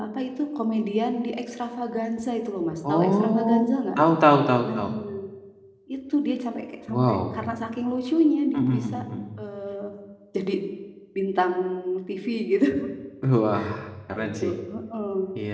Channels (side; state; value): both; identical; correlation 1.00